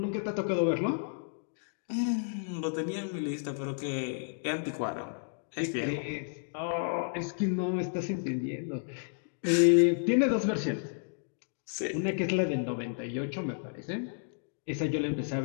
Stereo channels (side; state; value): right; silent; digital silence